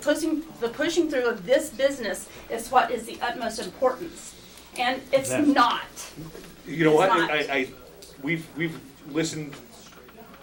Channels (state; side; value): identical; both; correlation 1.00